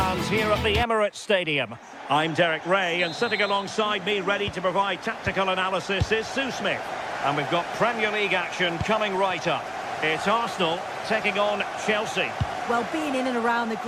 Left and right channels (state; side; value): identical; both; correlation 1.00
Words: here at the Emirates Stadium. I'm Derek Ray, and sitting alongside me ready to provide tactical analysis is Sue Smith. And we've got Premier League action coming right up. It's Arsenal taking on Chelsea. Well, being in and around the